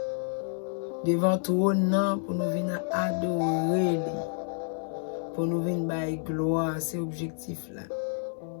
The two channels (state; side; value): silent; right; 58 dB below the other